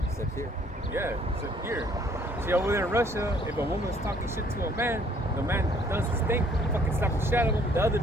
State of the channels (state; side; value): normal; both; correlation 0.61